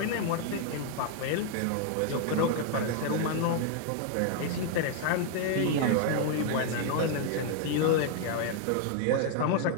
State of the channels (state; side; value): different; both; correlation 0.00